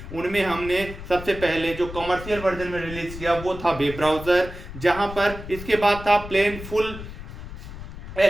उनमें हमने सबसे पहले जो कमर्शियल वर्जन में रिलीज किया वो था वेब ब्राउजर, जहां पर इसके बाद था प्लेन फुल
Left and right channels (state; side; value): noise; left; rumble, 11 dB below the sound